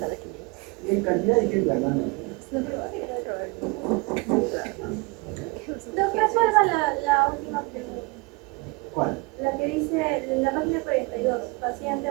quien. Y hay cantidad de gente hablando. Resuelva la última pregunta. ¿Cuál? La que dice en la página 42, paciente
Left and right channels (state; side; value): quieter; left; 26.9 dB